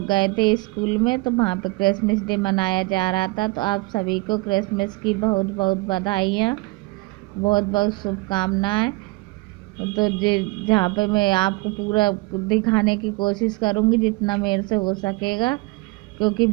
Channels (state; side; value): quieter; left; 23.3 dB